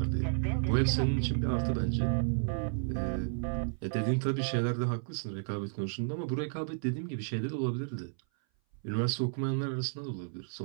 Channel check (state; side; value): silent; left; 56 dB below the other